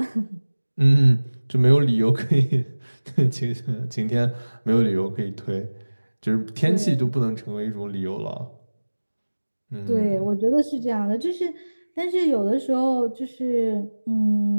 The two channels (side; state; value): both; inverted; correlation -1.00